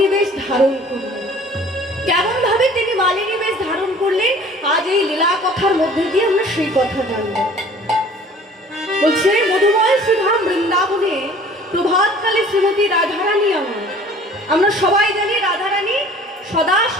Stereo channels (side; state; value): both; normal; correlation 0.50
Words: বেশ ধারণ করলেন, কেমন ভাবে তিনি মালিনী বেশ ধারণ করলেন, আজ এই লীলা কথার মধ্যে দিয়ে আমরা সেই কথা জানব। বলছে মধুময় শ্রীধাম বৃন্দাবনে প্রভাতকালে শ্রীমতী রাধারানী আমরা সবাই জানি রাধারানী সদা